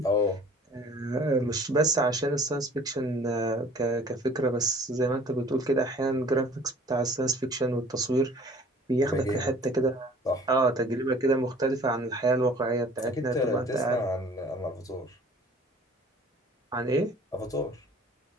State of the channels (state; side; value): normal; both; correlation 0.51